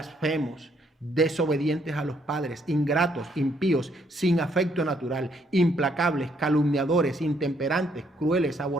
desobedientes a los padres, ingratos, impíos, sin afecto natural, implacables, calumniadores, intemperantes, crueles,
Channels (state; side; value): normal; both; correlation 0.70